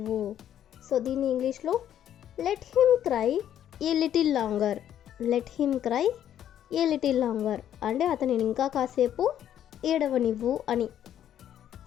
సో దీన్ని ఇంగ్లీష్లో లెట్ హిమ్ క్రై ఏ little longer. Let him cry ఏ లిటిల్ లాంగర్ అంటే అతనిని ఇంకా కాసేపు ఏడవనివ్వు అని.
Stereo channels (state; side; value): quieter; right; 10.6 dB